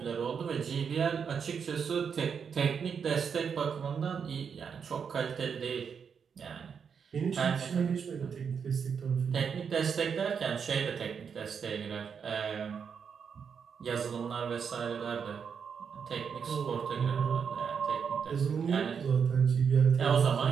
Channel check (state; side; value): quieter; left; 6.7 dB